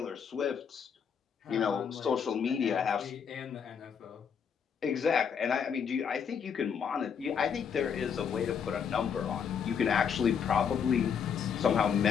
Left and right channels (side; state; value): right; quieter; 7.1 dB